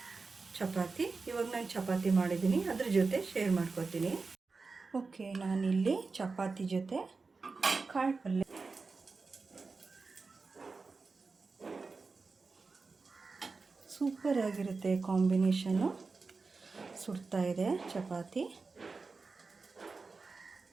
ಚಪಾತಿ. ಇವಾಗ ನಾನು ಚಪಾತಿ ಮಾಡಿದ್ದೀನಿ, ಅದ್ರ ಜೊತೆ ಶೇರ್ ಮಾಡ್ಕೊತೀನಿ. ಓಕೆ, ನಾನಿಲ್ಲಿ ಚಪಾತಿ ಜೊತೆ ಕಾಳು ಪಲ್ಯ ಸೂಪರಾಗಿರುತ್ತೆ ಕಾಂಬಿನೇಷನ್ನು. ಸುಡ್ತಾ ಇದೆ ಚಪಾತಿ,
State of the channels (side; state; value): left; quieter; 4.2 dB